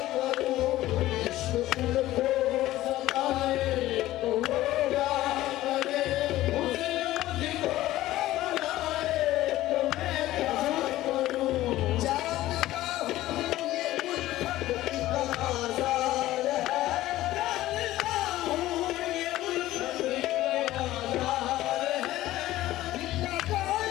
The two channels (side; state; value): right; quieter; 15.6 dB